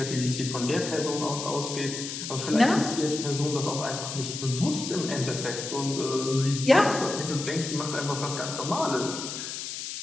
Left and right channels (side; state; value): left; noise; hiss, 6 dB below the sound